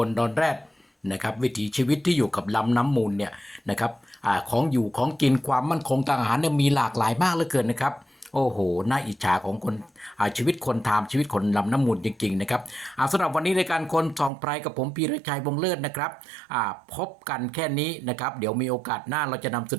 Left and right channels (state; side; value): drops out; left; at 14.3 s